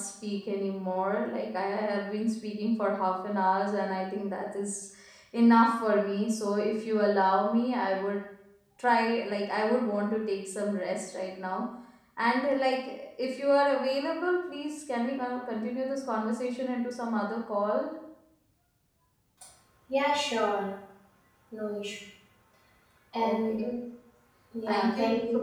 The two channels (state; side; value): identical; both; correlation 1.00